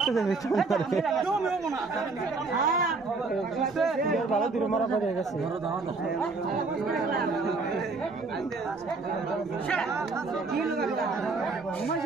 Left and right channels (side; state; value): left; quieter; 3.9 dB